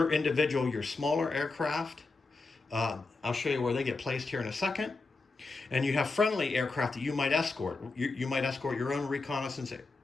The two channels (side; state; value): right; quieter; 3.7 dB